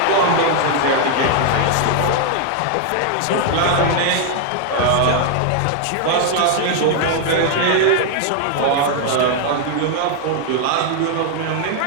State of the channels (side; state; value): both; different; correlation 0.00